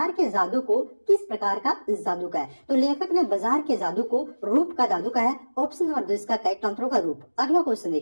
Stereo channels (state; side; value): inverted; both; correlation -1.00